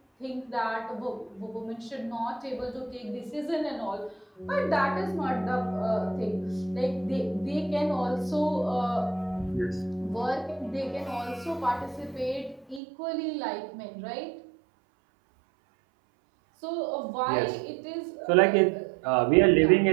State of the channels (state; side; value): drops out; left; at 12.8 s